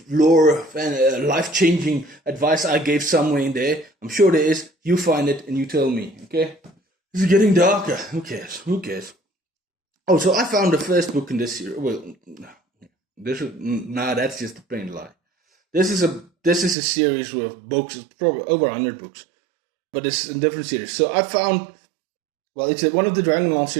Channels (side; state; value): left; drops out; at 16.8 s